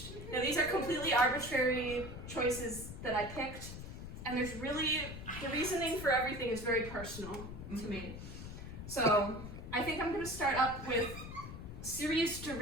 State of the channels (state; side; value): noise; left; rumble, 10 dB below the sound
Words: Now these are completely arbitrary choices that I picked, and there's really, the reasoning for everything is very personal to me. So I think I'm going to start up with serious